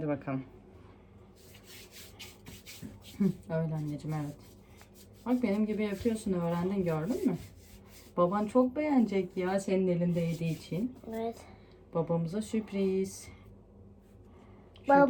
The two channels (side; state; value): both; identical; correlation 1.00